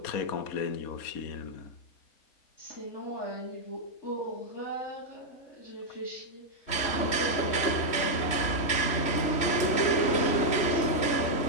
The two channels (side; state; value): right; late; 3.1 ms